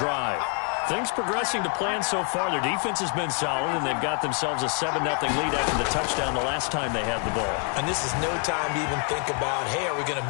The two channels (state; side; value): quieter; right; 39.2 dB